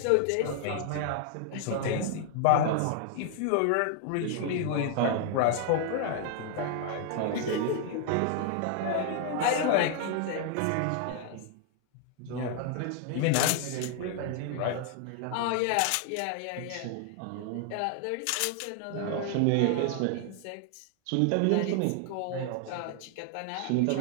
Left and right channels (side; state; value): both; different; correlation 0.00